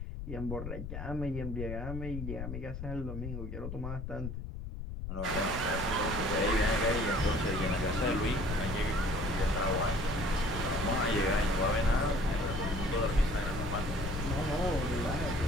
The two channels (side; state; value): left; noise; rumble, 6 dB below the sound